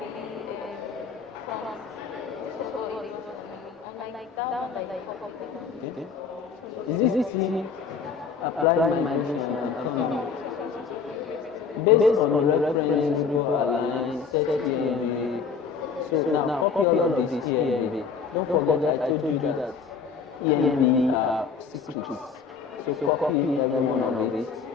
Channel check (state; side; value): quieter; right; 5.7 dB